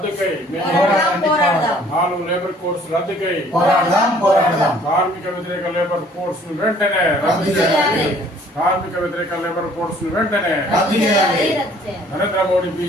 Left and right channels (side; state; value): both; normal; correlation 0.57